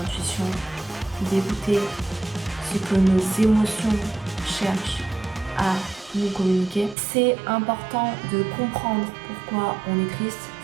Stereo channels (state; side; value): drops out; left; at 7.0 s